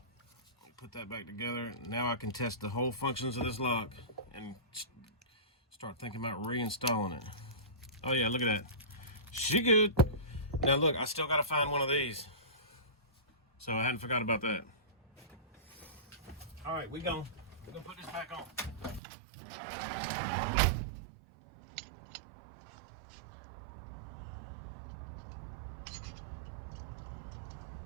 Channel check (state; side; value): drops out; left; at 19.0 s